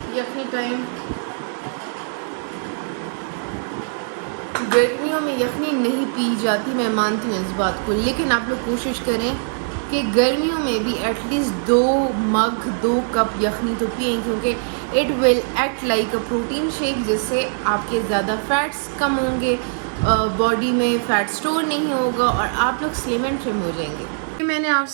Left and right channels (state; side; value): silent; left; digital silence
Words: यखनी टाइम, गर्मियों में यखनी नहीं पी जाती, मैं मानती हूँ इस बात को, लेकिन आप लोग कोशिश करें कि गर्मियों में भी एटलीस्ट 2 कप यखनी तो पिएं, क्योंकि it will act like a protein shake, जिससे आपके ज़्यादा फैट्स कम होंगे, बॉडी में फ़ैट स्टोर नहीं होगा और आप लोग स्लिम एंड ट्रिम हो जाएंगे। मैंने आप